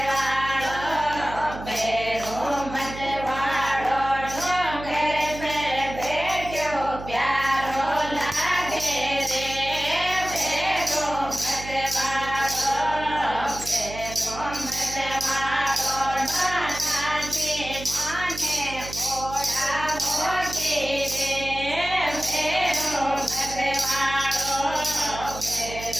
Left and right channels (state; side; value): noise; right; hum, 11 dB below the sound